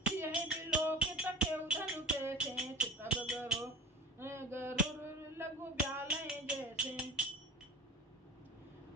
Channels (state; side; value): normal; both; correlation 0.36